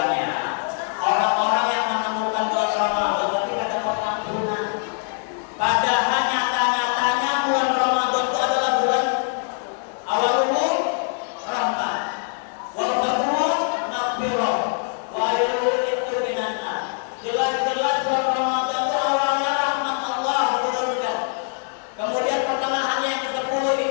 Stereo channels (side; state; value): right; silent; 63 dB below the other